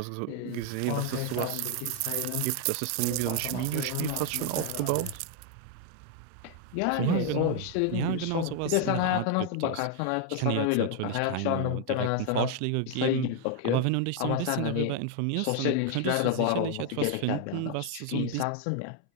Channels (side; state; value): both; different; correlation 0.00